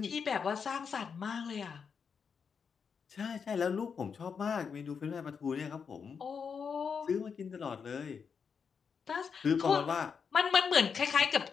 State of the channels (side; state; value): right; quieter; 6.2 dB